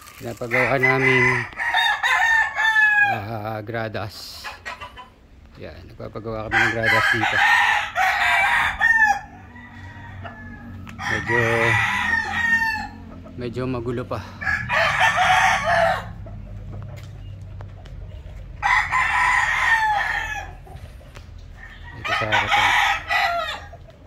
pinapagawa naming gradas. Yan, nagpapagawa kami ng gradas dito. Medyo magulo pa. Ito sa harapan.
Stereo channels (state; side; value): identical; both; correlation 1.00